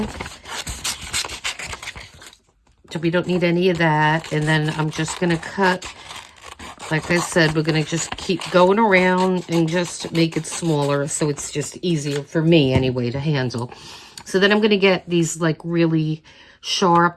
So we don't need any of that. And then I'm just gonna cut, like I said, we're gonna just keep going around and just make it smaller so it's just easier for me anyway to handle. So then I'm gonna get these like really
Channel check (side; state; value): both; identical; correlation 1.00